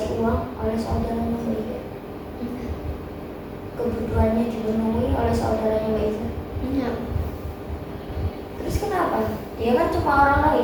uang oleh saudaranya Mbak Iza? Kebutuhannya dipenuhi oleh saudaranya Mbak Iza? Enggak. Terus kenapa? Dia kan cuma orang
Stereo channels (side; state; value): both; identical; correlation 1.00